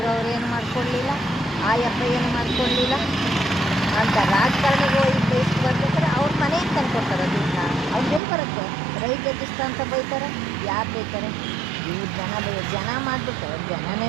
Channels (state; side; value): drops out; left; at 8.2 s